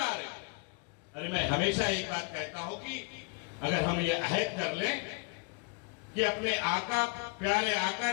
में। अरे मैं हमेशा एक बात कहता हूं कि अगर हम ये अहद कर लें कि अपने आका, प्यारे आका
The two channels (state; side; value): quieter; right; 32.8 dB